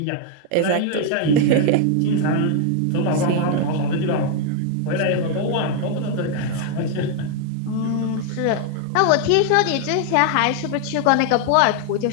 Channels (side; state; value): both; different; correlation 0.00